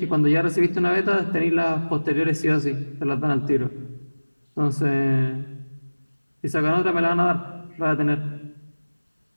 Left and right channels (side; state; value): both; inverted; correlation -1.00